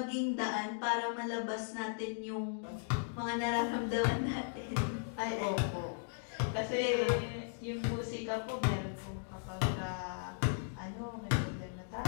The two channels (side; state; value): right; silent; digital silence